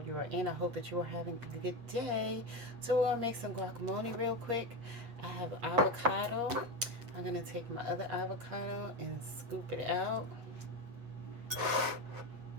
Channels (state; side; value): late; left; 8.4 ms